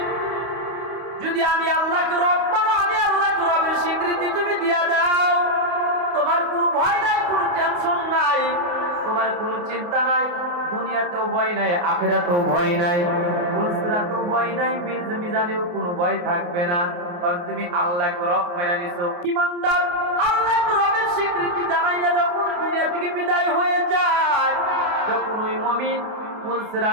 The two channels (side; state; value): left; late; 29 ms